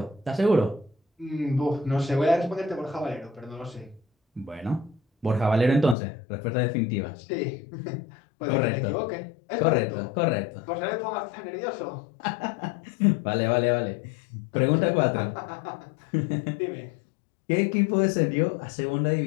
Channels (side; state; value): right; drops out; at 6.0 s